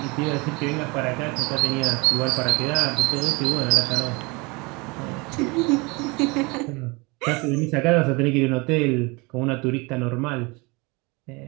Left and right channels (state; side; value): quieter; left; 27.0 dB